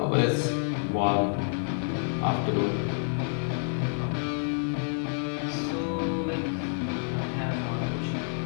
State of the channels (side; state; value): right; silent; digital silence